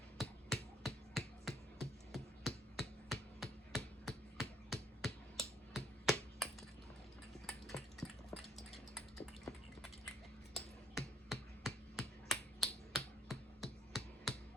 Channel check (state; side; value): normal; both; correlation 0.66